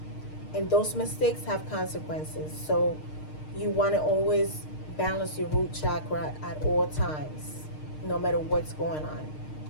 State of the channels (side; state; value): right; late; 6.5 ms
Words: and those mistakes have consequences. So you want to always balance your root chakra at all times, no matter what's going on.